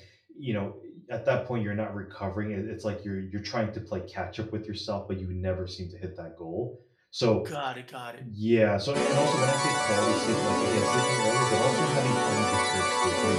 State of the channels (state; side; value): identical; both; correlation 1.00